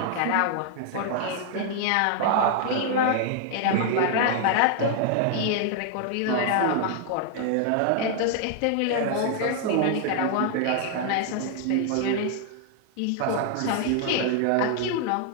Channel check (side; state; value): both; different; correlation 0.00